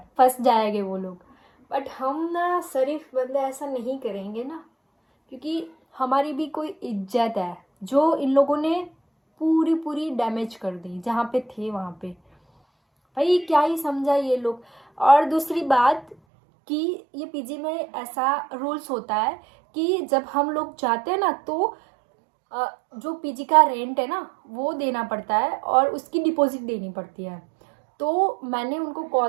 फंस जाएंगे वो लोग, बट हम ना शरीफ बंदे ऐसा नहीं करेंगे ना, क्योंकि हमारी भी कोई इज्जत है जो इन लोगों ने पूरी डैमेज कर दी जहाँ पे थे वहाँ पे। भाई क्या ही समझा ये लोग। और दूसरी बात कि ये पीजी में ऐसा रूल्स होता है कि जब हम लोग जाते हैं ना, तो जो पीजी का रेंट है ना वो देना पड़ता है और उसकी डिपॉजिट देनी पड़ती है। तो मैंने उनको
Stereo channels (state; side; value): drops out; left; at 16.2 s